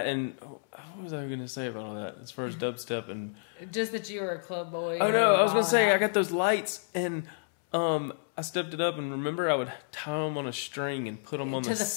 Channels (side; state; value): right; silent; 58 dB below the other